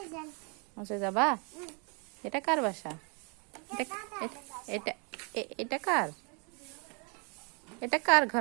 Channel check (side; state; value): left; quieter; 34.7 dB